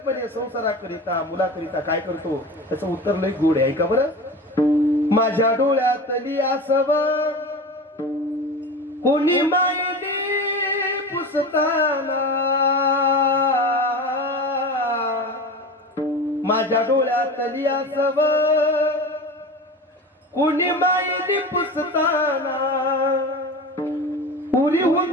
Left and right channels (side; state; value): both; normal; correlation 0.31